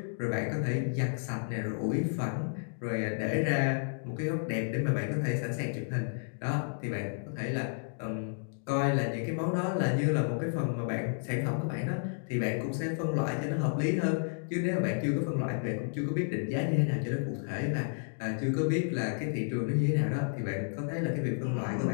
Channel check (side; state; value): right; silent; digital silence